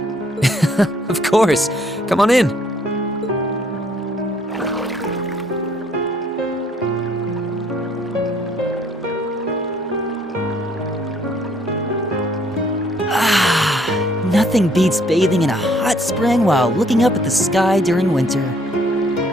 Of course. Come on in. Nothing beats bathing in a hot spring while looking up at the sky during winter.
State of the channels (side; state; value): both; normal; correlation 0.64